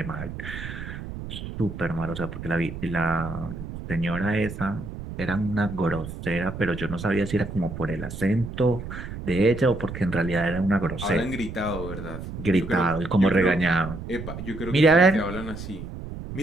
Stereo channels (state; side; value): noise; right; rumble, 9 dB below the sound